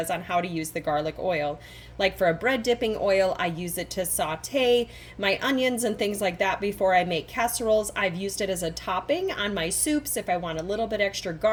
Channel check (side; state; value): both; identical; correlation 1.00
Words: on how to use the garlic oil. Like for a bread dipping oil, I use it to saute my onions and things like that before I make casseroles. I've used it as a topping on my soups if I want a little bit extra